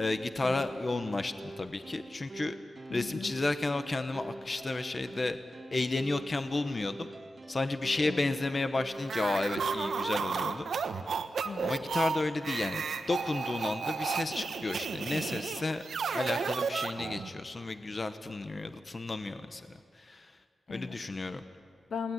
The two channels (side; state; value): both; normal; correlation 0.90